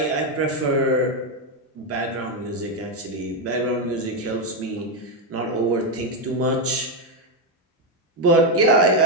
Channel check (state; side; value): normal; both; correlation 0.05